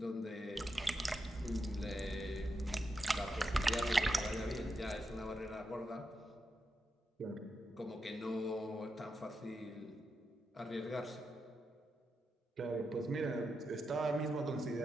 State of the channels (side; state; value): both; normal; correlation 0.86